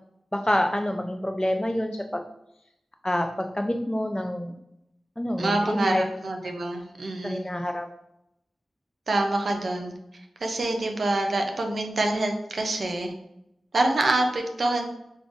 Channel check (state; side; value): normal; both; correlation 0.94